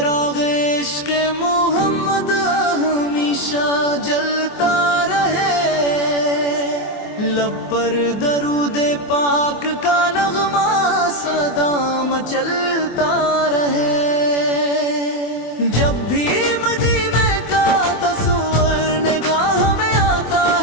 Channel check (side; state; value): right; late; 24 ms